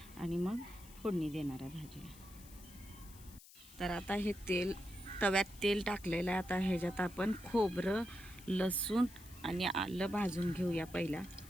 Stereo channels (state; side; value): noise; left; hiss, 20 dB below the sound